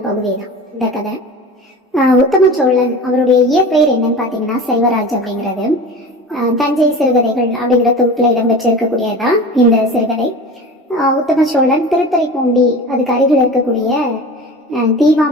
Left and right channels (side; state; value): both; normal; correlation 0.34